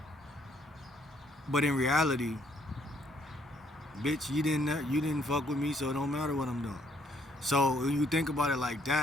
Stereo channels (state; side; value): normal; both; correlation 0.67